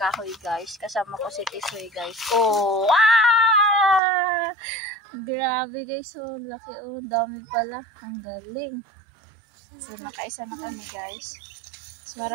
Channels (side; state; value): left; drops out; at 4.0 s